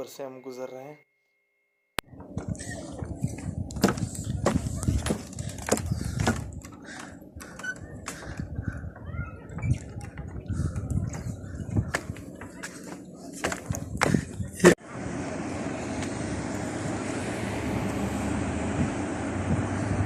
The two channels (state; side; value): identical; both; correlation 1.00